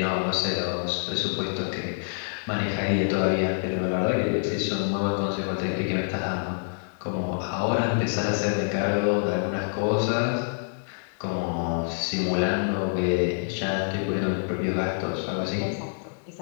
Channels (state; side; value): silent; right; digital silence